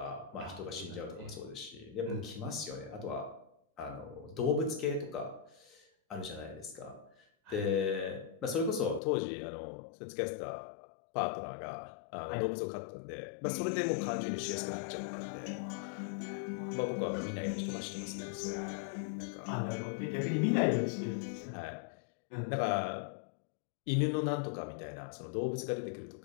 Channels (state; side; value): drops out; right; at 9.0 s